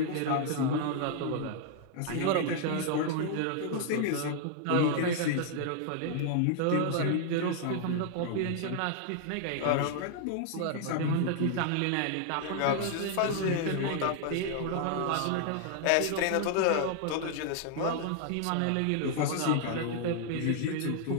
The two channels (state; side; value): different; both; correlation 0.00